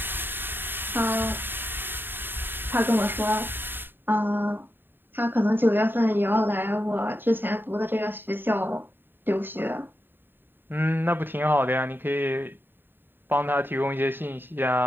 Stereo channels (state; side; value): late; left; 0.097 ms